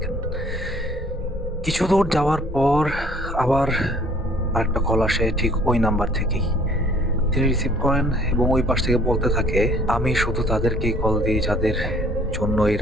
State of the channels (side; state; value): both; normal; correlation 0.56